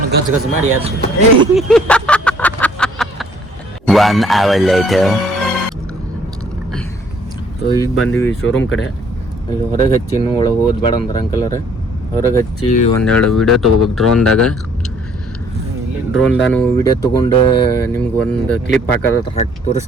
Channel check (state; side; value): normal; both; correlation 0.60